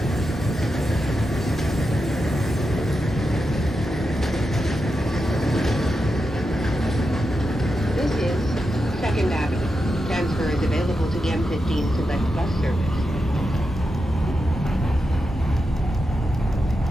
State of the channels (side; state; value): both; normal; correlation 0.88